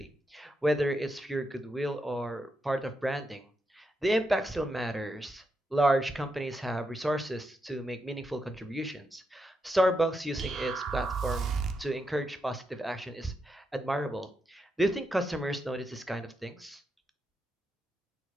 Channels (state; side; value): normal; both; correlation 0.84